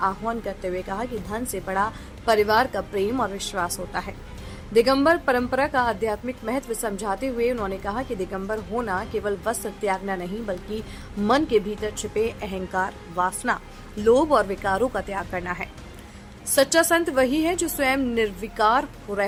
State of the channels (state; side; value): identical; both; correlation 1.00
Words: आह्वान करते हुए कहा कि धन से बड़ा परिवार का प्रेम और विश्वास होता है। दिगंबर परंपरा का आध्यात्मिक महत्व समझाते हुए उन्होंने कहा कि दिगंबर होना केवल वस्त्र त्यागना नहीं, बल्कि मन के भीतर छिपे अहंकार, वासना, लोभ और विकारों का त्याग करना है। सच्चा संत वही है जो स्वयं निर्विकार